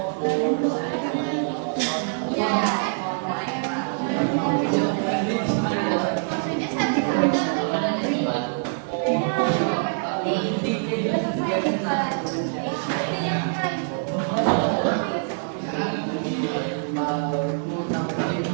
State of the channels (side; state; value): left; silent; 57 dB below the other